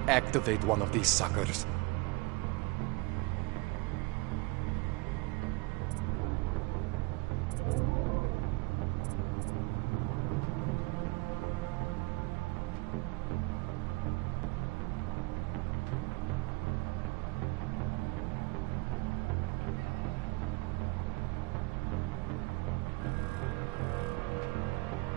activate one of these suckers.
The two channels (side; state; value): left; quieter; 25.9 dB